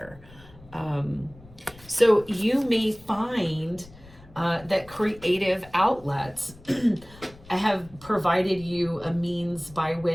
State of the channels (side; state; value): left; noise; rumble, 22 dB below the sound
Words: So you may find that creative outlets have provided you a means by